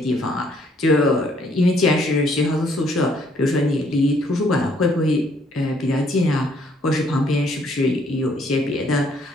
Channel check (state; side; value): normal; both; correlation 0.66